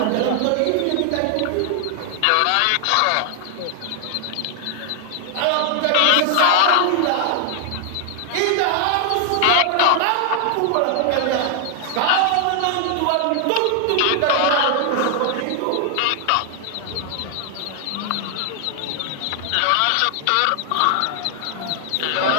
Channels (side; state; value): both; different; correlation 0.00